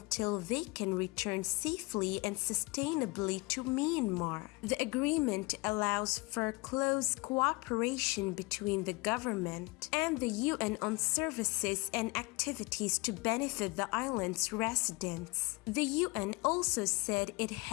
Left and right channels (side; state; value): right; quieter; 25.2 dB